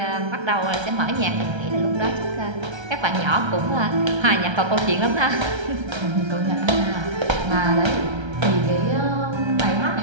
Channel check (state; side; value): late; left; 1.3 ms